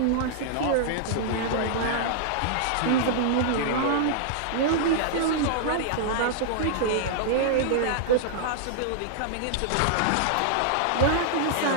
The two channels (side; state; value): both; different; correlation -0.01